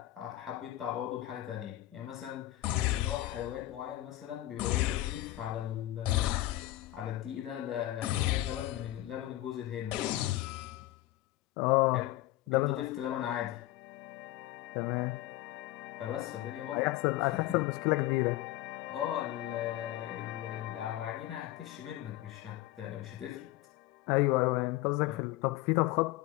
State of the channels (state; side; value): quieter; right; 15.7 dB